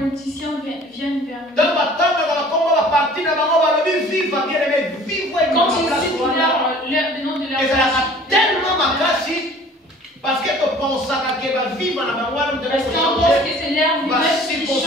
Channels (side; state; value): both; normal; correlation 0.49